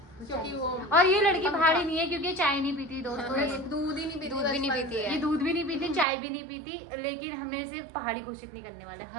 क्योंकि वो और ये लड़की पहाड़ी नहीं है, क्योंकि ये चाय नहीं पीती दोस्तों। ये दूध ही नहीं पीती, दूध भी नहीं पीती है। ये दूध भी नहीं पीती, चाय भी नहीं पीती, लेकिन हमने इसे पहाड़ी घोषित नहीं करने वाले,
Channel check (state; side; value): drops out; left; at 6.1 s